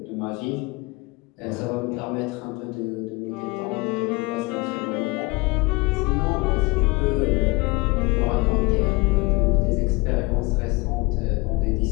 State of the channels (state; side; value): quieter; right; 24.5 dB